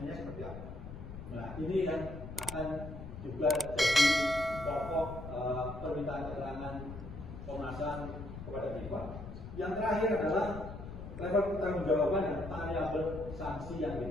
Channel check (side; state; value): left; noise; rumble, 10 dB below the sound